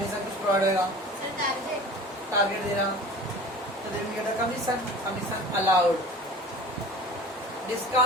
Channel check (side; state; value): both; normal; correlation 0.40